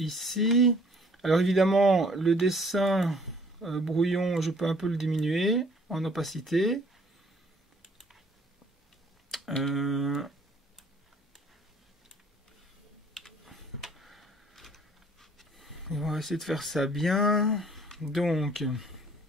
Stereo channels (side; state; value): both; normal; correlation 0.58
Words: Alors, évidemment, le dessin brouillon, je peux un peu le diminuer en opacité. On va essayer de faire ça bien. Donc,